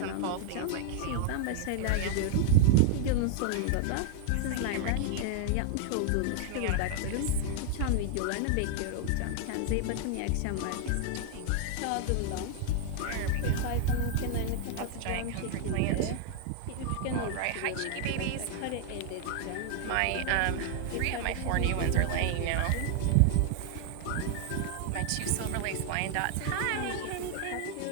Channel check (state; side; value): different; both; correlation 0.00